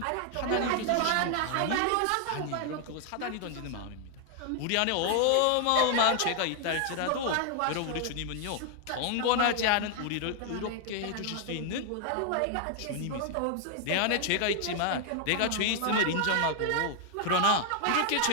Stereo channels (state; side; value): different; both; correlation 0.00